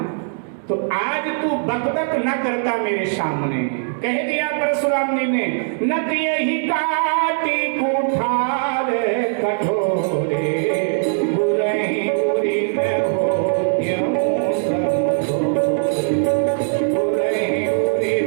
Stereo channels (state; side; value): silent; left; digital silence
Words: तो आज तू बकबक न करता मेरे सामने। कह दिया परशुराम जी ने, नत यही काटी कुठार कठोरे, बुरही बुरी न हो त्यों सब, बुरही बुरी